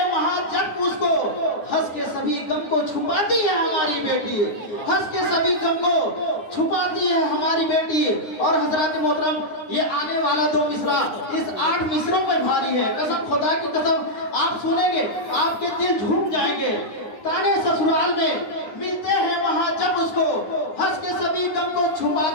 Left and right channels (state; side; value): late; right; 10 ms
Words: वहां जब उसको, हंस के सभी गम को छुपाती है हमारी बेटी, हंस के सभी गम को छुपाती है हमारी बेटी। और हजरत मोहतरम, ये आने वाला 2 मिसरा इस 8 मिसरों पर भारी है। कसम खुदा की कसम, आप सुनेंगे आपके दिल झूम जाएंगे। ताने ससुराल में मिलते हैं वहां जब उसको, हंस के सभी गम को